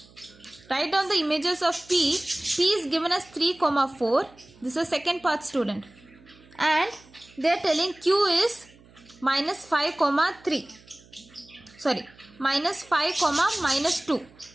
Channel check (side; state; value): right; noise; hum, 26 dB below the sound